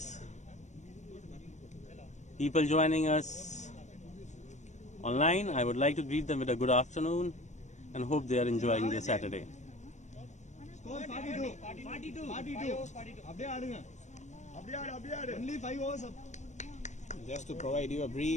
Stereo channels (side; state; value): right; late; 0.34 ms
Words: people joining us online, I would like to greet them with a good afternoon and hope they are enjoying their Saturday. Score 42. 42. Only 5 overs. Just to provide you a